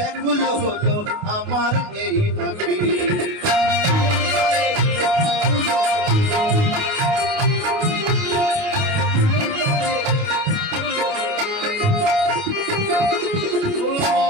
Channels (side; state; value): left; late; 29 ms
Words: হলো আমার এই আঁখি।